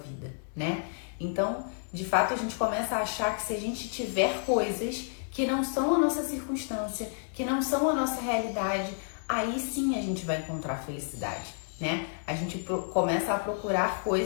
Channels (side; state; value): right; silent; digital silence